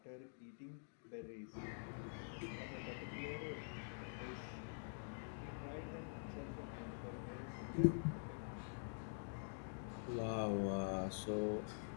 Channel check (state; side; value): silent; right; digital silence